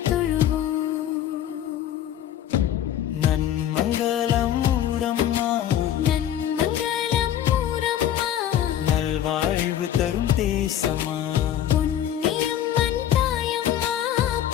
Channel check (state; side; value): quieter; right; 10.9 dB